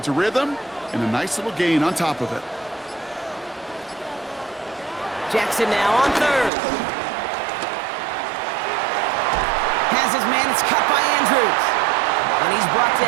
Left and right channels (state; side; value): drops out; left; at 6.5 s